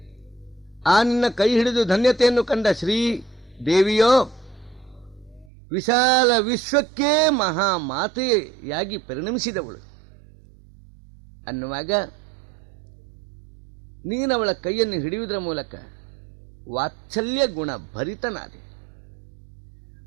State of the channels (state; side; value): drops out; left; at 5.5 s